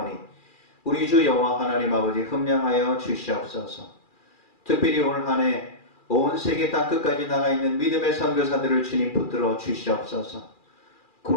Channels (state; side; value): late; right; 2.4 ms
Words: 우리 주 여호와 하나님 아버지 흠량하여 주시옵소서. 특별히 올 한 해 온 세계 땅끝까지 나가 있는 믿음의 선교사들을 주님 붙들어 주시옵소서.